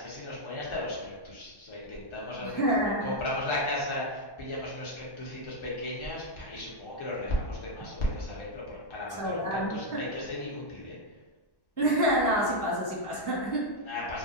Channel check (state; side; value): late; right; 1.1 ms